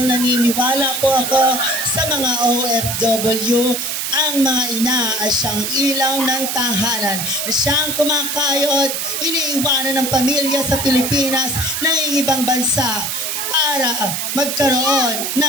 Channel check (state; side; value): noise; right; hiss, 2 dB below the sound